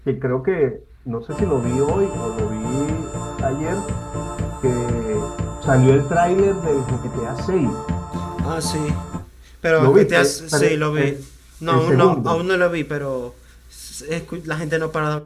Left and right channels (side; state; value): both; identical; correlation 1.00